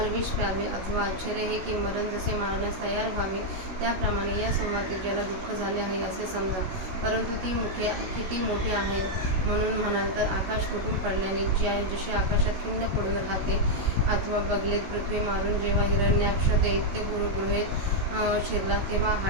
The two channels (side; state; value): left; late; 16 ms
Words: विष प्यावे अथवा आश्चर्य हे की मरण जसे मारण्यास तयार व्हावे त्याप्रमाणे या संवादतेजाला दुःख झाले आहे असे समजा. परंतु ती मुखे किती मोठी आहेत म्हणून म्हणाल तर आकाश तुटून पडल्याने जशी आकाशात खिंड पडून राहते अथवा बगलेत पृथ्वी मारून जेव्हा हिरण्याक्ष दैत्य गृहेत शिरला तेव्हा